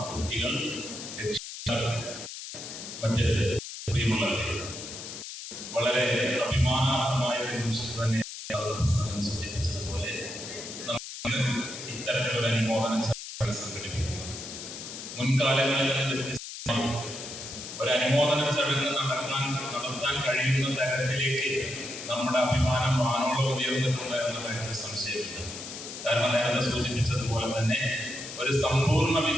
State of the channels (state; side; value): noise; left; hiss, 10 dB below the sound